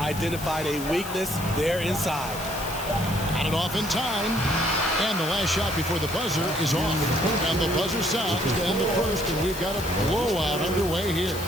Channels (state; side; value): noise; left; hiss, 12 dB below the sound